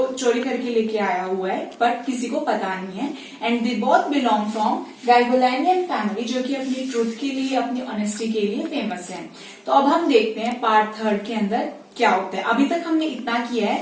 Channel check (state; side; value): identical; both; correlation 1.00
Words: चोरी करके लेके आया हुआ है, बट किसी को पता नहीं है. And they both belong from Garoghlanian family, जो कि अपनी ट्रूथ के लिए, अपनी ऑनेस्टी के लिए फेमस है. तो अब हम देखते हैं पार्ट थर्ड के अंदर क्या होता है. अभी तक हमने इतना किया